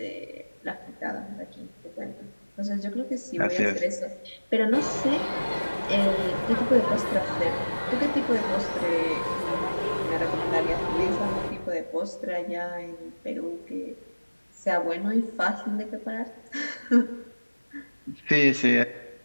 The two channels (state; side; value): inverted; both; correlation -1.00